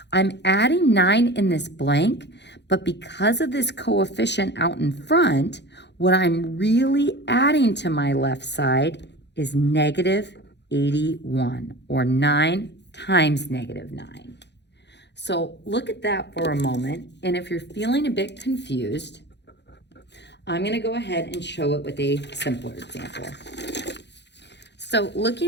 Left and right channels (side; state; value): right; late; 0.50 ms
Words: I'm adding 9 in this blank, but because of this coefficient out in front, what I'm really adding to my left side is negative 81, or 9 times negative 9. So look at that for a moment, and if you're feeling a bit confused, I'm going to go ahead and show it with a simpler example. So